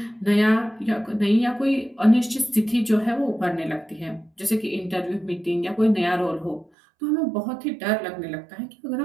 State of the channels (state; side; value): drops out; left; at 6.7 s